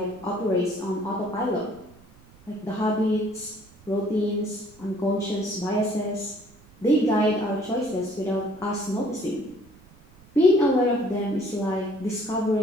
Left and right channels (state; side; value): noise; right; rumble, 26 dB below the sound